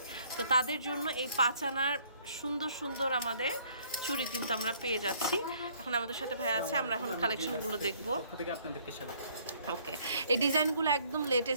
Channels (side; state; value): both; inverted; correlation -0.62